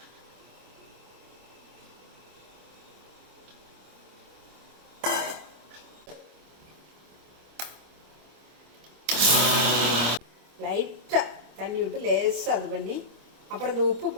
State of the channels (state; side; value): late; left; 25 ms